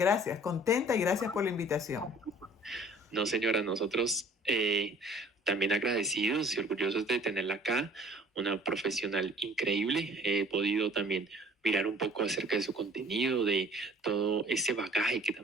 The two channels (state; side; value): normal; both; correlation 0.52